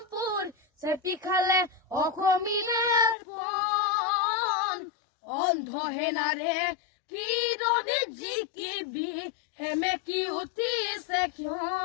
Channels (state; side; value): drops out; right; at 3.2 s